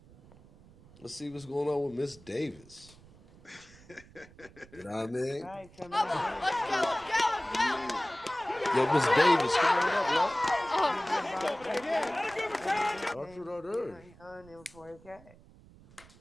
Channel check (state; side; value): noise; right; rumble, 23 dB below the sound